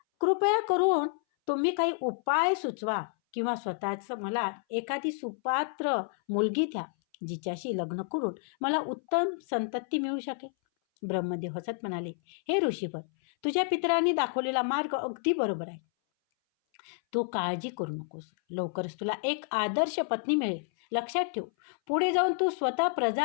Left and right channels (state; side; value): silent; right; 58 dB below the other